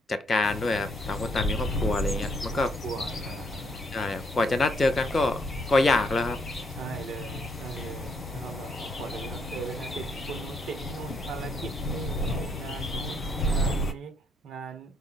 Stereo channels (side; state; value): both; normal; correlation 0.72